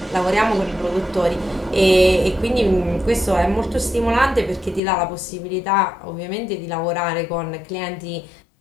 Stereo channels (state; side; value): drops out; right; at 4.8 s